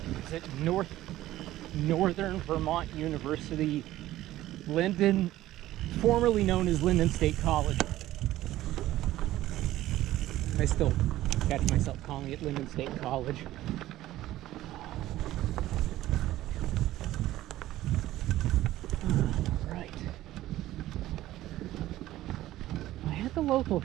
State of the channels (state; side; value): quieter; left; 15.0 dB